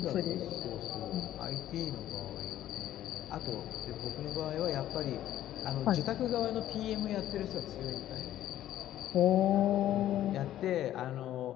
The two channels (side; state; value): right; quieter; 12.6 dB